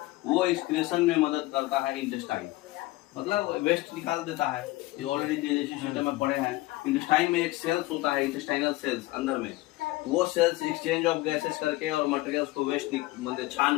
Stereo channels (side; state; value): right; quieter; 19.6 dB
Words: वो एक्सक्रेशन में मदद करता है इंटेस्टाइन। मतलब वेस्ट निकाल देता है। ये ऑलरेडी डाइजेस्टिव सिस्टम में पढ़े हैं। इंटेस्टाइन में एक सेल्स होता है, इंटेस्टाइनल सेल्स अंदर में। वो सेल्स एक्सचेंज ऑफ गैसेस करके और मटेरियल्स को वेस्ट मतलब छान